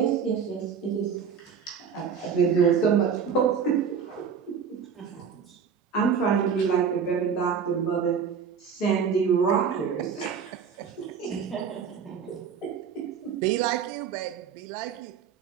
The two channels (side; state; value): left; quieter; 6.8 dB